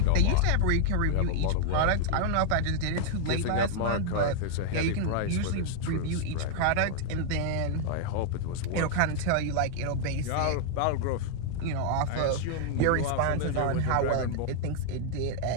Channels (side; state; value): both; different; correlation 0.00